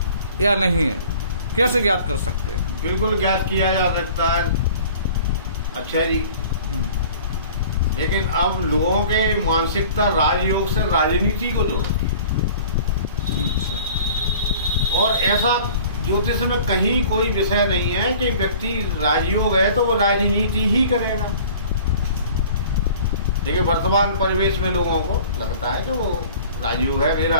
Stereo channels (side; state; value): both; inverted; correlation -0.46